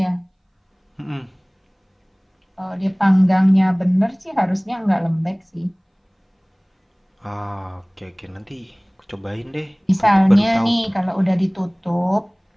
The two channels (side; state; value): both; identical; correlation 1.00